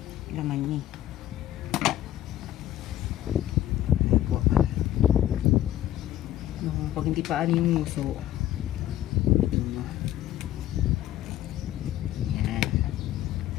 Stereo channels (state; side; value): quieter; right; 13.0 dB